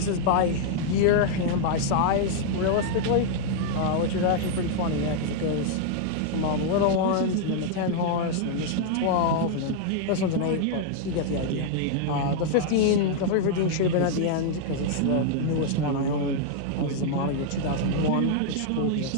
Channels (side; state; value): both; different; correlation -0.01